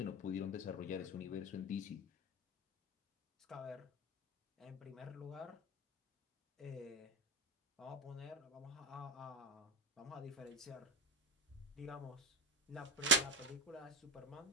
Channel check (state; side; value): normal; both; correlation 0.16